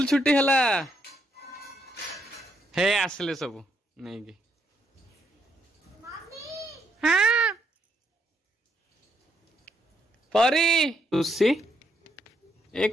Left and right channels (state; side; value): normal; both; correlation 0.75